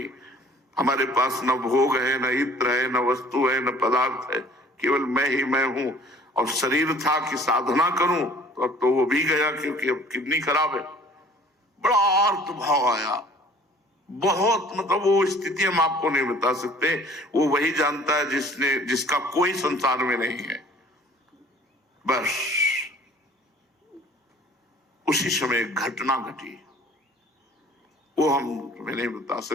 हमारे पास न भोग है, न इत्र है, न वस्तु है, न पदार्थ है, केवल मैं ही मैं हूं। और शरीर था कि साधना करूं, तो अब तो वो भी गया, क्योंकि अब किडनी खराब है। बड़ा अर्थ भाव आया, बहुत, मतलब वो स्थिति हम आपको नहीं बता सकते। वो वही जानता है जिसका कोई संसार में नहीं है। बस उसी समय एक घटना घटी, वो हम तुम्हें नहीं बता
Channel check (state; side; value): normal; both; correlation 0.51